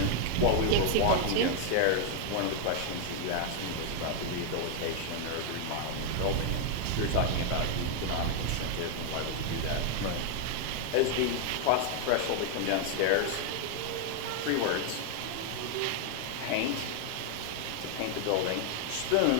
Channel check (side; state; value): both; different; correlation 0.00